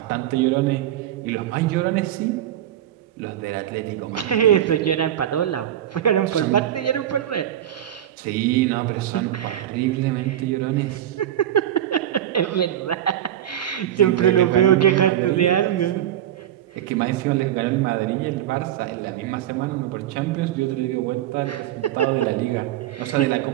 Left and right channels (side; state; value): left; quieter; 11.5 dB